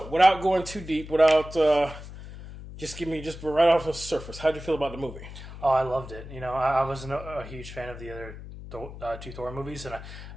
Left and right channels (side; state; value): left; noise; hum, 13 dB below the sound